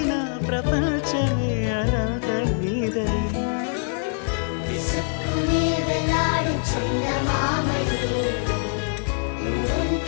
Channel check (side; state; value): right; silent; 63 dB below the other